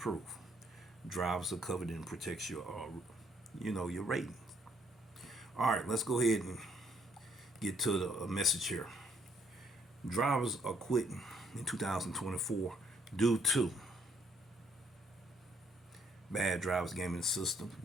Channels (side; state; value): both; normal; correlation 0.68